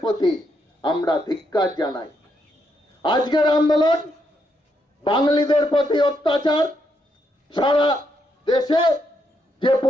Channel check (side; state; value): both; normal; correlation 0.78